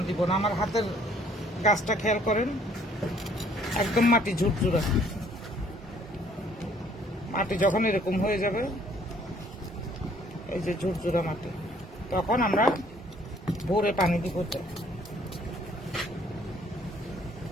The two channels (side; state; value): both; normal; correlation 0.60